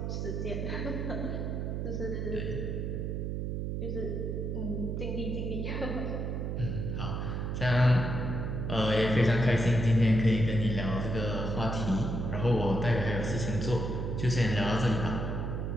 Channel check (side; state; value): right; noise; hum, 2 dB below the sound